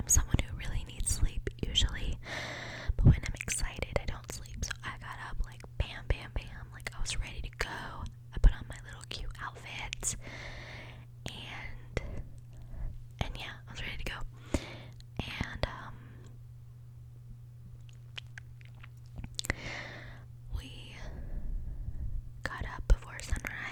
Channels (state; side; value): identical; both; correlation 1.00